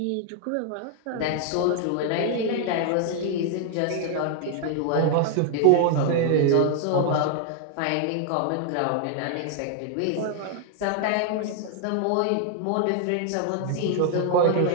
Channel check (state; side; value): different; both; correlation 0.00